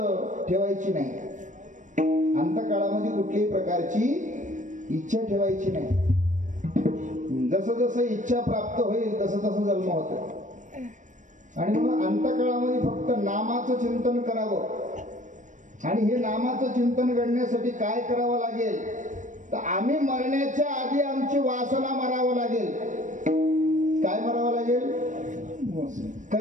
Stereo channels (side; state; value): left; late; 0.36 ms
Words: ठेवायची नाही. अंतकाळामध्ये कुठल्याही प्रकारची इच्छा ठेवायची नाही. जसं जसं इच्छा प्राप्त होईल तसं तसं जन्म होतो. आणि म्हणून अंतकाळामध्ये फक्त नामाचं चिंतन करावं. आणि हे नामाचं चिंतन करण्यासाठी काय करावं लागेल तर आम्ही मरण्याच्या आधी आमची वासना मारावं लागेल. काय मारावं लागेल?